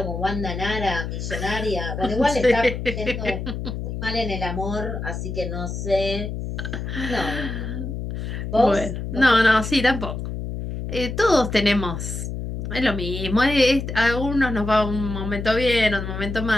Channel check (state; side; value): noise; left; hum, 5 dB below the sound